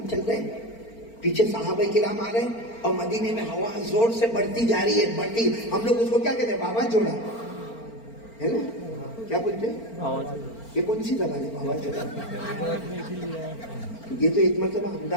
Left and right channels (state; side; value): late; right; 4.4 ms